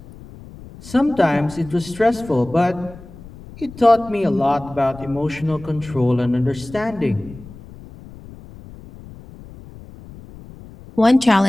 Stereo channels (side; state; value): left; noise; rumble, 18 dB below the sound